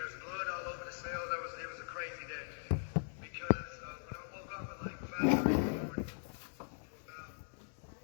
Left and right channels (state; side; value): silent; right; digital silence